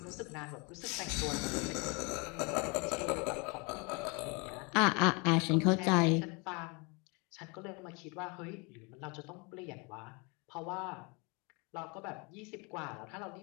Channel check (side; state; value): right; quieter; 30.3 dB